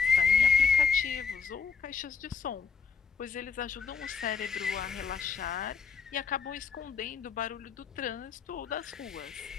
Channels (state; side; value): quieter; right; 5.9 dB